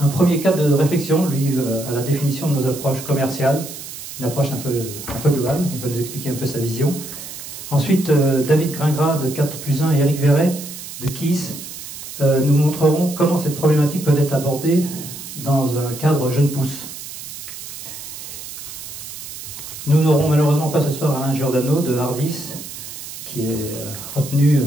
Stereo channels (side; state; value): right; noise; hiss, 11 dB below the sound